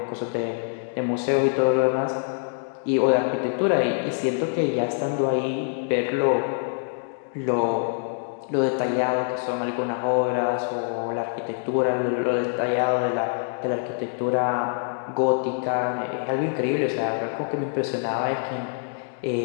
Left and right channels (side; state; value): right; silent; 62 dB below the other